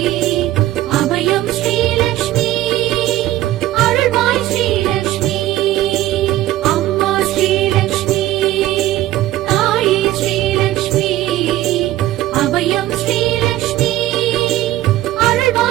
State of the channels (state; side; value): quieter; left; 14.8 dB